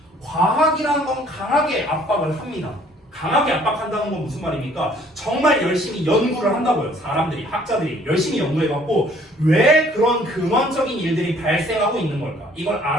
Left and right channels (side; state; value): both; normal; correlation 0.59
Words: 과학이라는 건 강하게 압박을 합니다. 강하게 압박한다는 건 무슨 말입니까? 정말 열심히 연구를 한다고요. 사람들이, 학자들이 열심히 연구해갖고 왜 그런 근원적인 일들이 발생하고 있는 걸까? 이걸